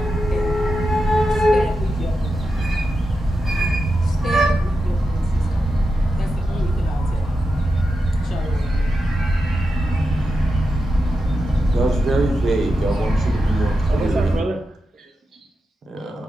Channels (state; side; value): normal; both; correlation 0.89